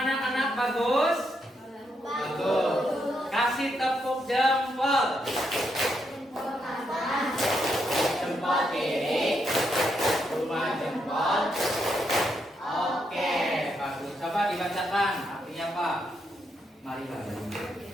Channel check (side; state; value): both; normal; correlation 0.79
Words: anak, bagus? Bagus. Kasih tepuk jempol. Jempol kiri, 2 jempol marilah.